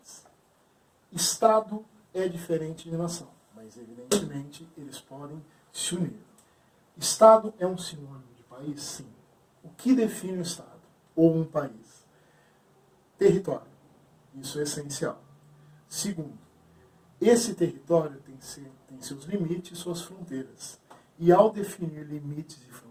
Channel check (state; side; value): identical; both; correlation 1.00